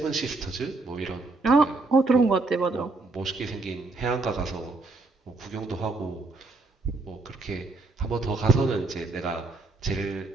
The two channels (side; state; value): left; quieter; 3.4 dB